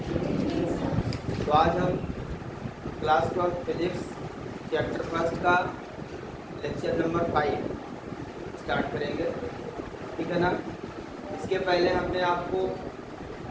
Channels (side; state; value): both; identical; correlation 1.00